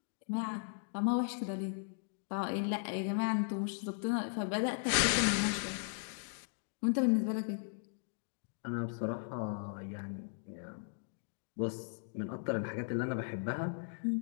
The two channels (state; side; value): silent; right; digital silence